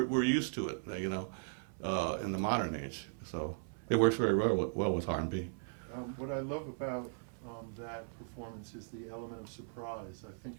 used to it, you know, in the modern age. So it works very well with R&B. What I love about that performance is the element of surprise. I think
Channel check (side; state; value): left; silent; 53 dB below the other